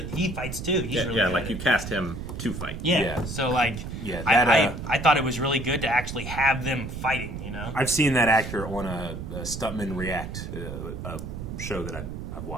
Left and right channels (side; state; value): right; noise; rumble, 7 dB below the sound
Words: fights too. He's really good. Like you cast him to fight. Yeah. So like, I thought it was really good to actually have them fighting. You know, I've seen that actor on a Stuntman React a show that I've